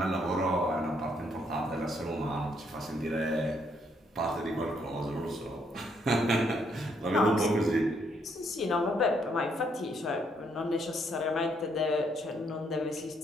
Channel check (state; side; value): normal; both; correlation 0.72